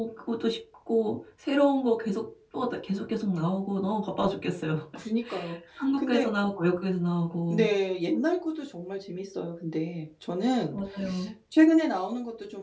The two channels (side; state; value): both; identical; correlation 1.00